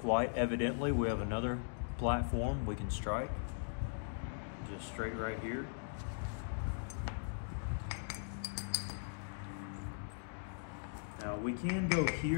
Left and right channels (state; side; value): silent; right; digital silence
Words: evidently, we have another platform we can strike. Just straight right here. Now, we can go